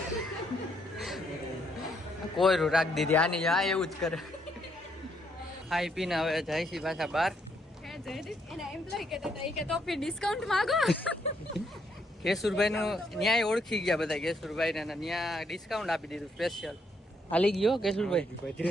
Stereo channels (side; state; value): both; normal; correlation 0.73